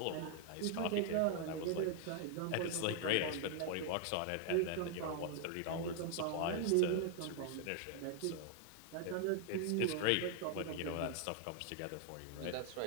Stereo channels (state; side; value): different; both; correlation 0.00